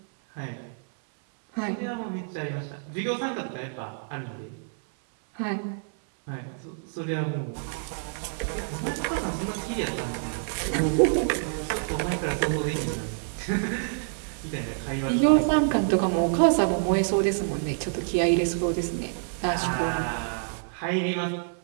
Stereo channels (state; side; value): silent; left; 60 dB below the other